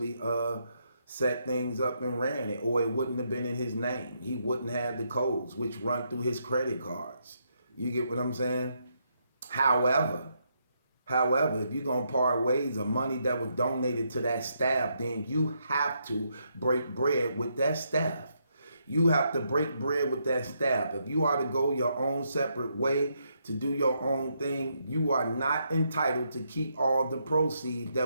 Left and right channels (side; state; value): both; inverted; correlation -0.78